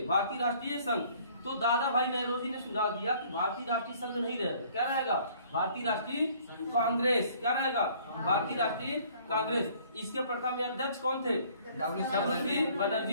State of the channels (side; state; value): both; inverted; correlation -0.57